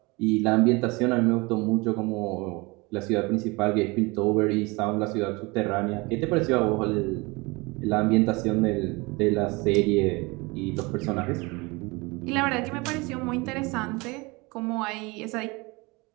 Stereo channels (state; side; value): quieter; left; 25.5 dB